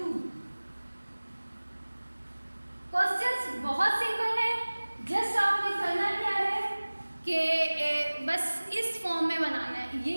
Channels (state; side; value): inverted; both; correlation -1.00